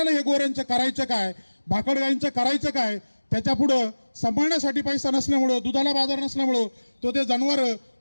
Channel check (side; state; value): both; inverted; correlation -1.00